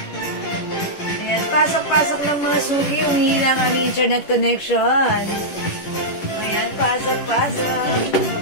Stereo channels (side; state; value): right; late; 10 ms